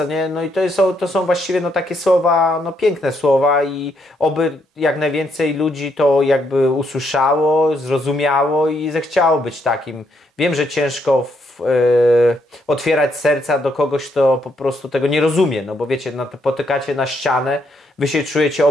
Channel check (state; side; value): normal; both; correlation 0.75